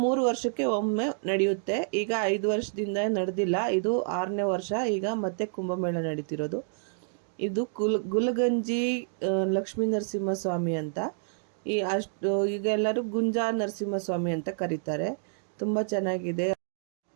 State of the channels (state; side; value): silent; left; digital silence